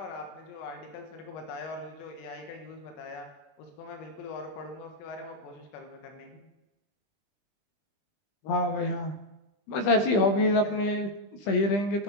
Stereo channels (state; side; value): late; right; 20 ms